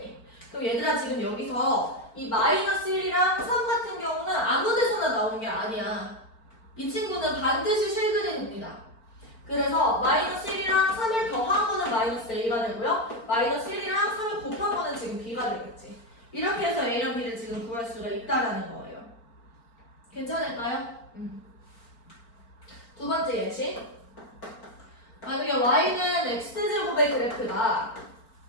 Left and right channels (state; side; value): late; right; 4.4 ms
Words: 그럼 얘들아 지금 여기서 이 -1이랑 3 같은 경우는 아무 데서나 나온 게 아니야. 이 친구는 반드시 실그림입니다. 그래서 -1이랑 3을 더한 거는 -a가 되고요. -1이랑 3을 곱한 거는 지금 b가 되겠지. 이렇게 해서 a랑 b를 지금 구할 수가 있다라는 거예요. 괜찮을까요? 두 번째 예시. 만약에 y는 x제곱의 그래프다.